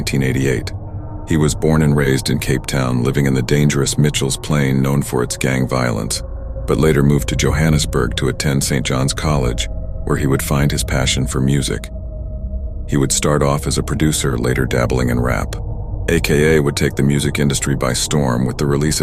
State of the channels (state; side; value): identical; both; correlation 1.00